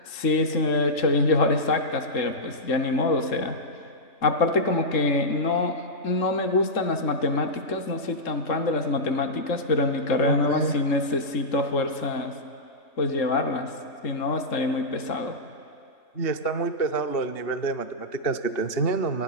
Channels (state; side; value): late; right; 3.6 ms